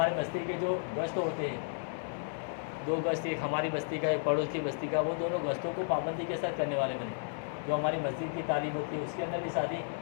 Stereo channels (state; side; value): silent; right; 56 dB below the other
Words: بستی کے جو گشت ہوتے ہیں، 2 گشت، ایک ہماری بستی کا ایک پڑوس کی بستی کا، وہ دونوں گشتوں کو پابندی کے ساتھ کرنے والے بنے۔ جو ہماری مسجد کی تعلیم ہوتی ہے اس کے اندر بھی ساتھی